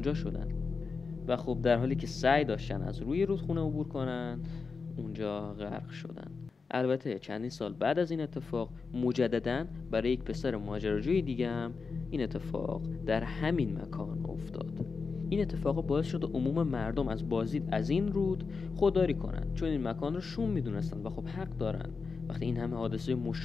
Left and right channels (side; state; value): right; quieter; 4.8 dB